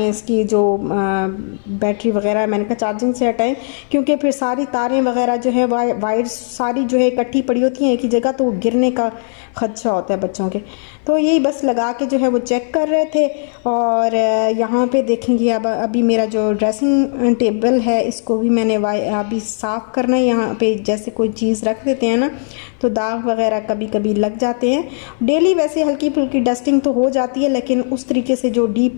इसकी जो बैटरी वगैरह है मैंने कहा चार्जिंग से हटाएं, क्योंकि फिर सारी तारें वगैरह जो है वायर सारी जो है इकट्ठी पड़ी होती हैं एक ही जगह, तो गिरने का खदशा होता है बच्चों के। तो यही बस लगा के जो है वो चेक कर रहे थे। और यहाँ पे देखेंगे अब अभी मेरा जो ड्रेसिंग टेबल है इसको भी मैंने अभी साफ़ करना है। यहाँ पे जैसे कोई चीज़ रख देते हैं ना तो दाग वगैरह कभी कभी लग जाते हैं। डेली वैसे हल्की फुल्की डस्टिंग तो हो जाती है, लेकिन उस तरीके से जो डीप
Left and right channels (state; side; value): silent; right; 60 dB below the other